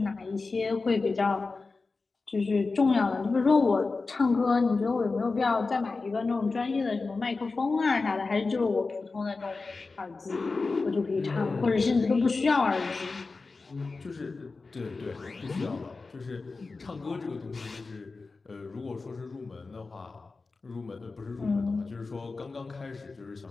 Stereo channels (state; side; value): quieter; right; 4.0 dB